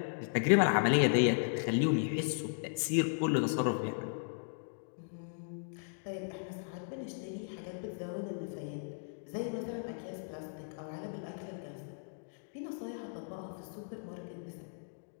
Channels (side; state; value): right; silent; digital silence